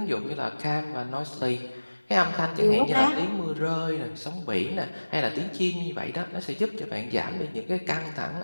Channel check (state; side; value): inverted; both; correlation -1.00